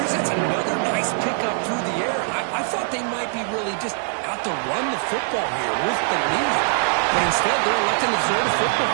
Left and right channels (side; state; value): left; silent; 64 dB below the other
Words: Chris, that's another nice pickup through the air. I thought they might be really just out to run the football here with the lead. But instead, they're electing to throw the